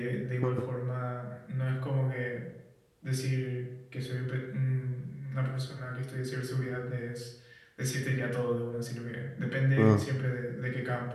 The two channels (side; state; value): both; identical; correlation 1.00